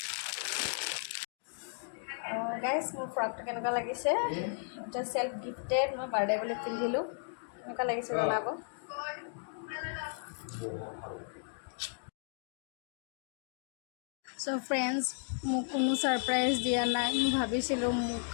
গাইজ, মোৰ ফ্ৰকটো কেনেকুৱা লাগিছে? এটা চেল্ফ গিফ্টেড, মই বাৰ্থডে বুলি পিন্ধিলোঁ। কেনেকুৱা লাগিছে জনাব। চ' ফ্ৰেণ্ডছ, মোক কোনো ছাৰপ্ৰাইজ দিয়া নাই। মই ভাবিছিলোঁ মোক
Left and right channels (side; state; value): right; silent; 55 dB below the other